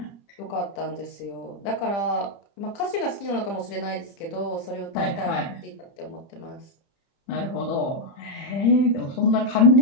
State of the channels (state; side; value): late; right; 30 ms